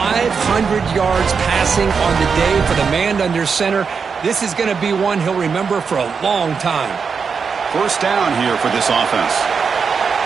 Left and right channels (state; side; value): quieter; left; 5.7 dB